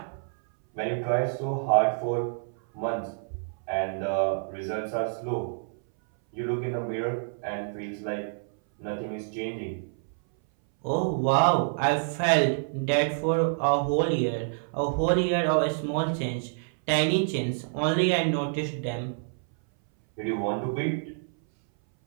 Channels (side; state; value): left; silent; 60 dB below the other